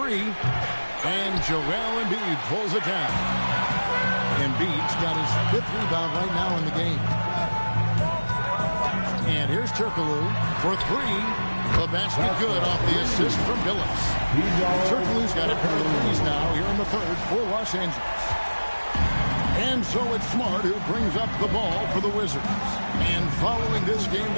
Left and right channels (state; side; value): inverted; both; correlation -1.00